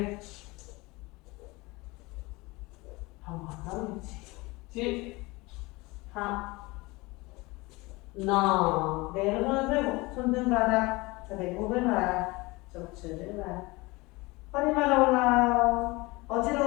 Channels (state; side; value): quieter; right; 23.3 dB